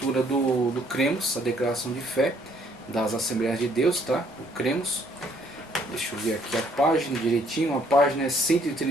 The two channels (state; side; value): normal; both; correlation 0.65